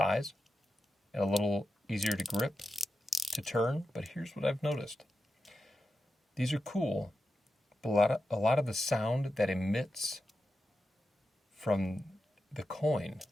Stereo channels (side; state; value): both; normal; correlation 0.90